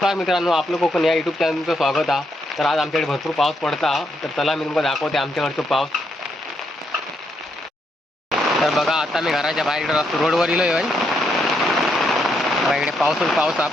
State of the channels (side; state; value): both; normal; correlation 0.78